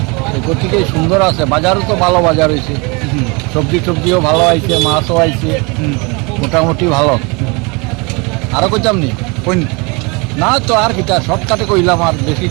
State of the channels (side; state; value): left; quieter; 29.3 dB